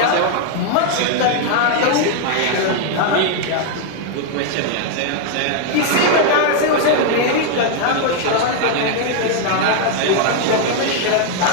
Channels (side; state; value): both; different; correlation 0.00